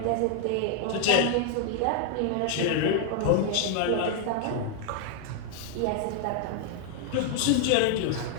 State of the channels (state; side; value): different; both; correlation 0.00